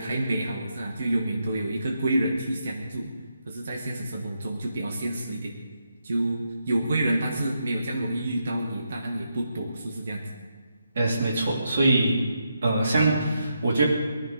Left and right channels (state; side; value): inverted; both; correlation -0.82